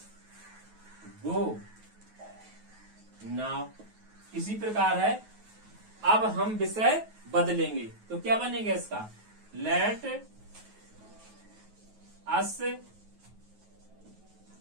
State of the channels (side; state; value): left; late; 9.3 ms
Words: गो नाउ। इसी प्रकार है अब हम विषय बदलेंगे, तो क्या बनेगा इसका? Let us